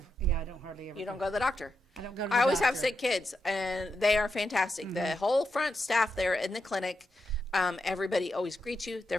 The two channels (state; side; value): normal; both; correlation 0.85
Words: hardly ever. You don't go to the doctor. I don't go to the I always doctor. have sick kids, and they are fantastic. The whole front staff there in the clinic, everybody always greets you. They're